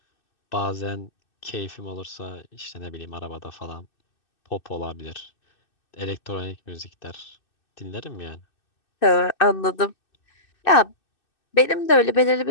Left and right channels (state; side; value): late; right; 2.6 ms